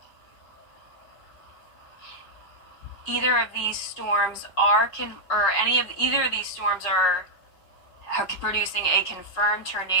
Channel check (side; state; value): right; late; 5.2 ms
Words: of these storms either of these storms are producing a confirmed